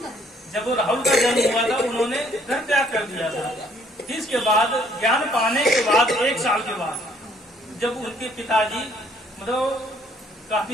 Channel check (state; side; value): normal; both; correlation 0.63